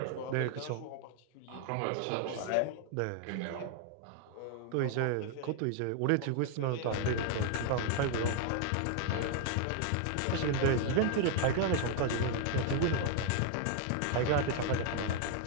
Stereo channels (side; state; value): both; different; correlation 0.00